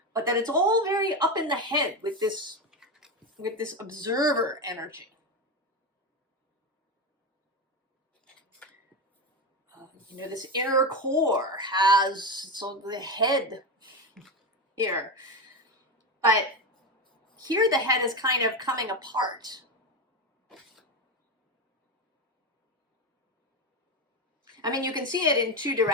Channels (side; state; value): both; normal; correlation 0.16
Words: But that it's all very up in the head with this observer energy. This inner core has the head here. But here the head is kind of coming apart. I mean, you can see it in two